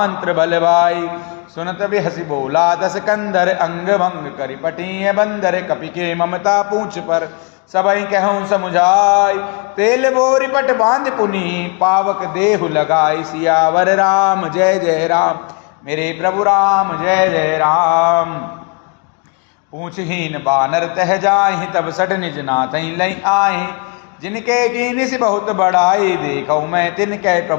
बल भाई, सुनत बिहसी बोला दस कंधर, अंग भंग करि पटिय बंदर, कपि के ममता पूछ पर, सबई कहूँ समुझाई, तेल बोरी पट बांध पुनि, पावक देहु लगाई, सियावर राम जय जय राम, मेरे प्रभु राम जय जय राम। पूछहीन बानर तह जाहि, तब सट निज नाथ लई आहि, जिनके कीनि से बहुत बड़ाई, देखौ मैं तिनके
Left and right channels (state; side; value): quieter; right; 33.7 dB